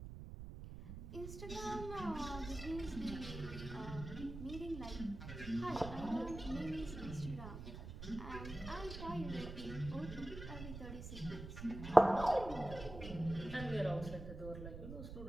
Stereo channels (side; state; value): right; noise; rumble, 9 dB below the sound